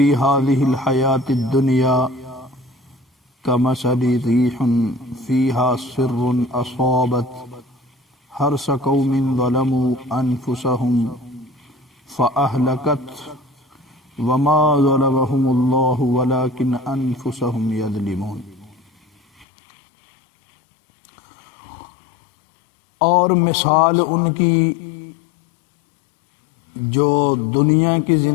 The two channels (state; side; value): drops out; right; at 19.5 s